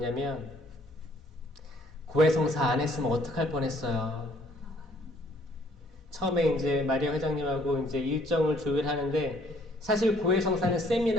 고해성사 안 했으면 어떡할 뻔했어요. 처음에 이제 마리아 회장님하고 이제 일정을 조율하는데 사실 고해성사는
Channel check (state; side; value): normal; both; correlation 0.62